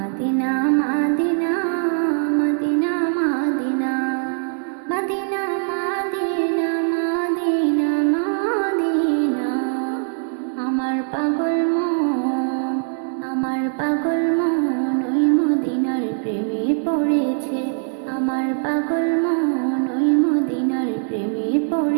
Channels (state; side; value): silent; left; digital silence